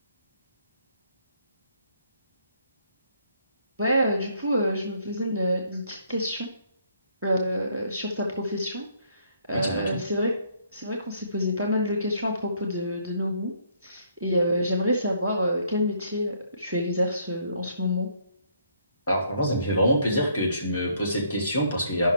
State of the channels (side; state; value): both; inverted; correlation -0.66